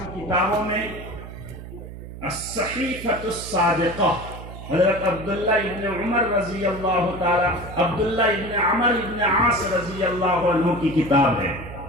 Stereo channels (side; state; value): right; noise; hum, 12 dB below the sound